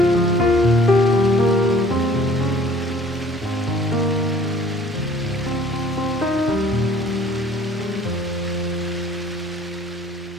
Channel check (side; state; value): both; normal; correlation 0.53